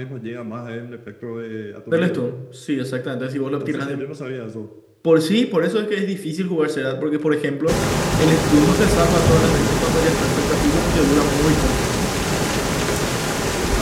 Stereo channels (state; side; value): identical; both; correlation 1.00